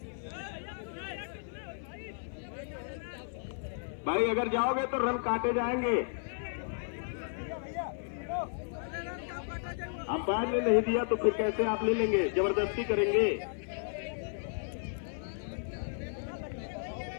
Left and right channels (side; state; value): right; silent; 55 dB below the other